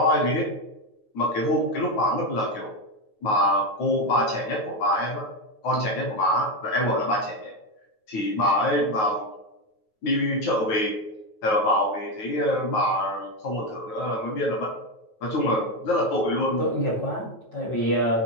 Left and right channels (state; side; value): late; right; 9.3 ms